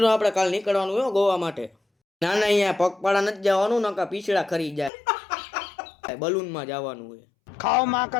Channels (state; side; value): drops out; right; at 4.9 s